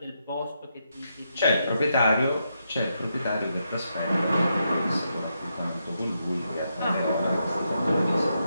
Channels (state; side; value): inverted; both; correlation -0.82